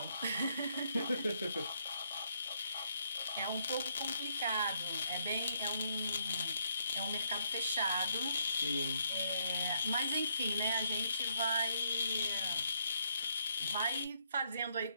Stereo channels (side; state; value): both; inverted; correlation -0.74